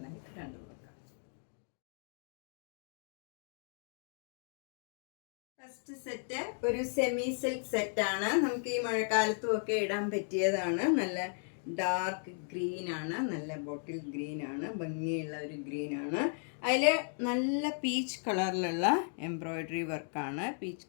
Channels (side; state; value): right; silent; 54 dB below the other